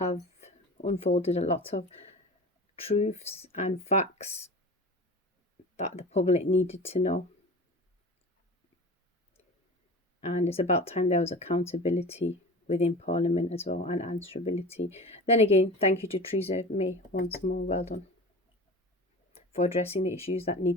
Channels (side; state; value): both; normal; correlation 0.34